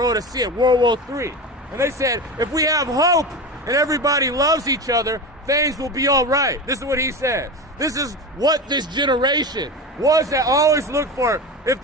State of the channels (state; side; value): normal; both; correlation 0.25